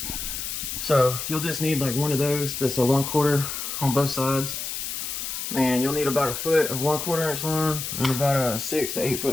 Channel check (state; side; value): noise; left; hiss, 5 dB below the sound